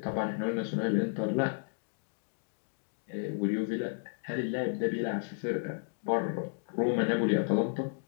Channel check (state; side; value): silent; right; 56 dB below the other